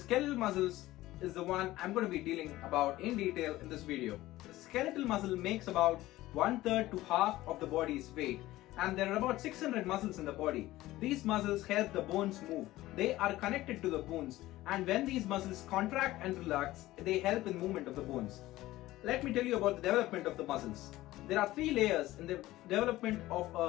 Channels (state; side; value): quieter; right; 16.7 dB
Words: muscles is the one I'm going to be dealing about in detail in this video. The skeletal muscle makes about 1/3 to half of the body's weight, and there are about 600 muscles in the body. These muscles help the bones move. They are connected to the bones, and when these muscles contract and relax, they help in movement of the bones. Let me tell you about the development of the muscles. There are three layers in the development of